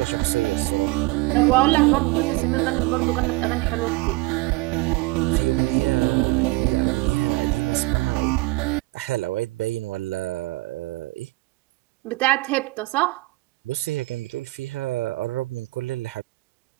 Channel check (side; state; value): left; quieter; 22.1 dB